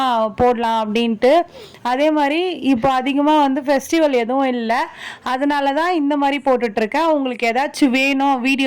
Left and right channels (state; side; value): identical; both; correlation 1.00